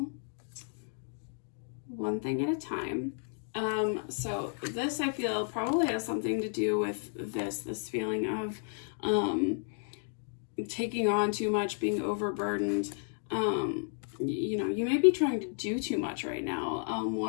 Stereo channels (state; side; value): silent; right; 56 dB below the other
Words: One thing at a time. So this, I feel, probably has something to do with this feeling of taking on too much, being overburdened. You know, you may be trying to do too much right now.